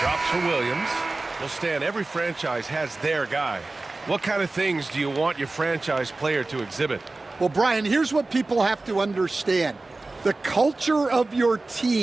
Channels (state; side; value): quieter; left; 3.2 dB